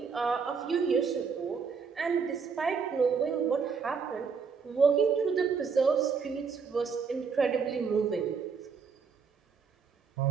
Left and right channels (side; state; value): left; quieter; 5.7 dB